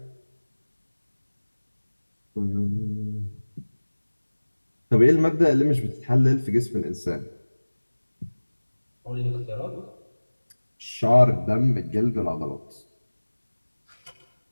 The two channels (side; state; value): both; inverted; correlation -1.00